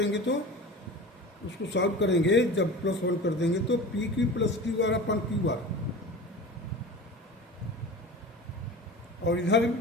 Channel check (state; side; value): normal; both; correlation 0.34